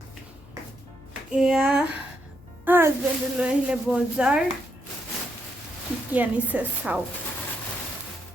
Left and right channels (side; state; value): left; noise; hum, 23 dB below the sound